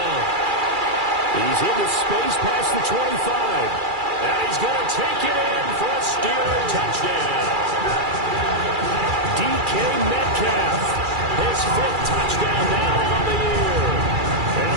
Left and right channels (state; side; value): late; left; 2.3 ms